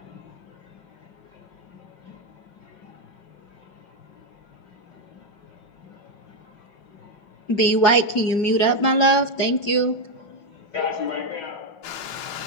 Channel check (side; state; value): right; late; 5.5 ms